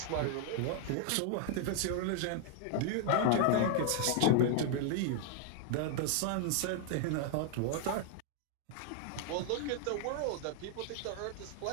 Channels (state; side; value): different; both; correlation 0.00